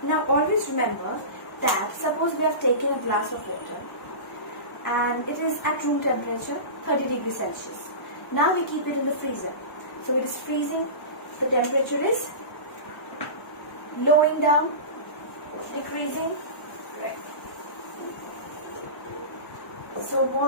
Now always remember that suppose we have taken a glass of water and it is at room temperature 30 degrees Celsius. Now we keep it in the freezer. So it is freezing, the temperature is lowering down, decreasing. Right. So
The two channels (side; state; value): right; late; 1.1 ms